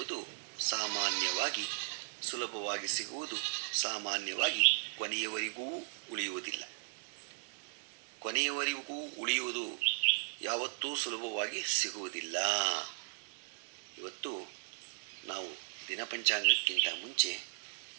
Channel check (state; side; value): silent; left; digital silence